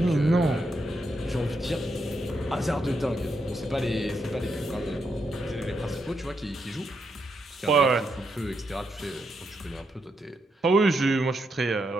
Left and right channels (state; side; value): normal; both; correlation 0.81